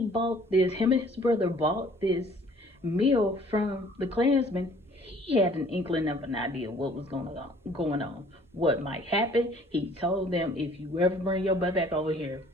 bought this. Him and his brother bought this meal from the Klansman. He had an inkling of an idea what was going on, what might happen. He told them, "If you ever bring your butt back over here,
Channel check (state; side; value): normal; both; correlation 0.55